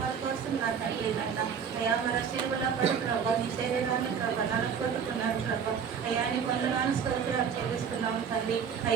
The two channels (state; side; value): quieter; left; 7.1 dB